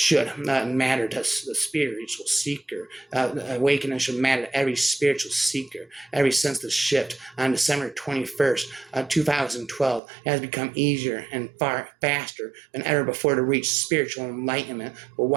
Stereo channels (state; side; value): drops out; left; at 10.0 s